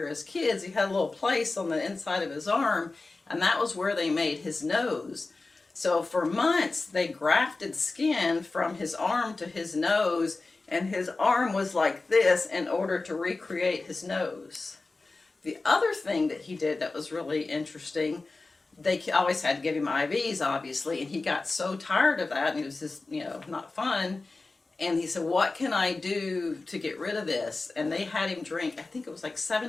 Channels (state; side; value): quieter; right; 3.5 dB